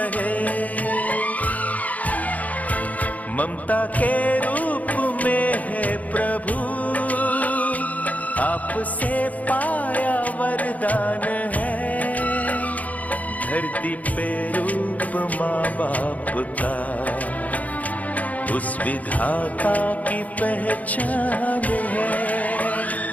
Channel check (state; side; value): late; right; 0.074 ms